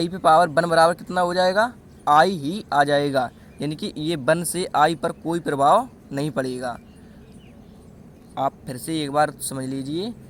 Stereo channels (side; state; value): both; identical; correlation 1.00